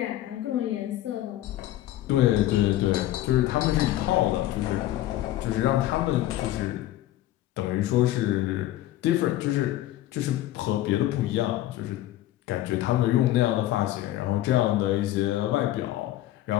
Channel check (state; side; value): quieter; right; 14.3 dB